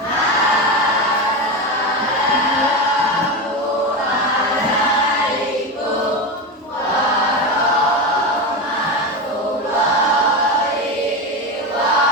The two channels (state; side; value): normal; both; correlation 0.18